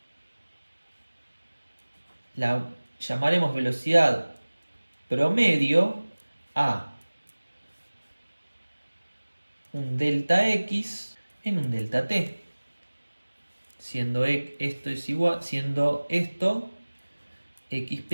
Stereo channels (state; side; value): inverted; both; correlation -1.00